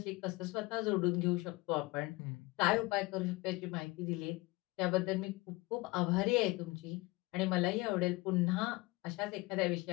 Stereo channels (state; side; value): quieter; right; 22.8 dB